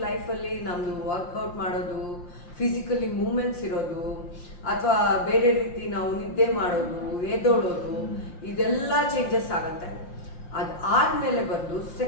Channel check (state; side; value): late; right; 5.7 ms